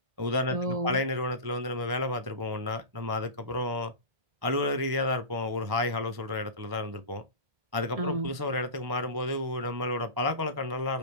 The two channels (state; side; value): late; left; 1.1 ms